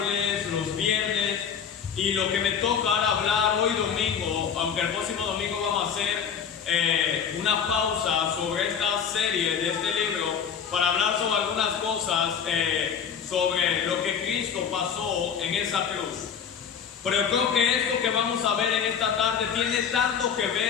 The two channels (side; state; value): right; quieter; 7.4 dB